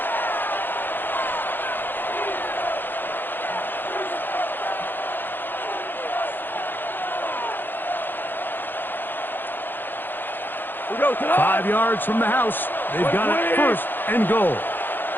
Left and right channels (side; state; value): right; late; 0.095 ms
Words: We go to the 5 yards from the house. They've got it first and goal.